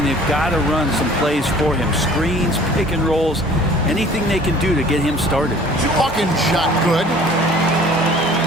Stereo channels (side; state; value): both; normal; correlation 0.50